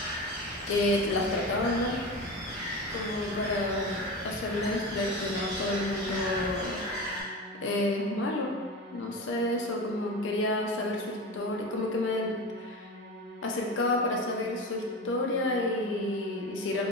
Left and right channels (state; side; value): normal; both; correlation 0.27